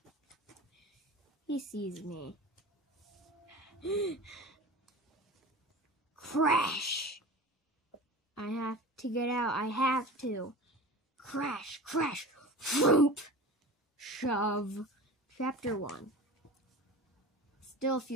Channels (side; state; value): both; normal; correlation 0.34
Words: He sees me. Crash! I have to get out, I have to. Crash, crash, whoop! Shove. Chapter 1. Still a